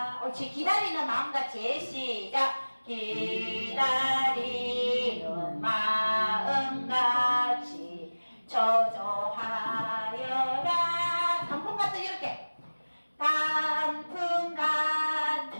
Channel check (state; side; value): inverted; both; correlation -1.00